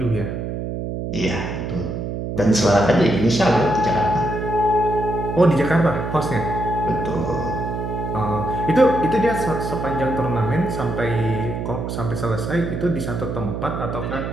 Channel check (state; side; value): noise; right; hum, 4 dB below the sound